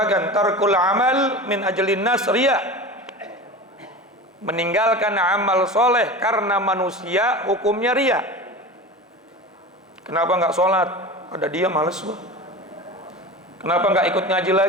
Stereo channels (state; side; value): normal; both; correlation 0.31